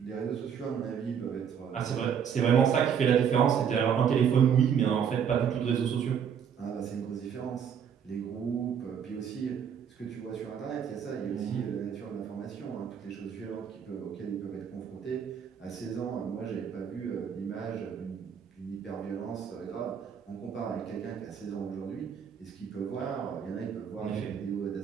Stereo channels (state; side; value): quieter; left; 7.8 dB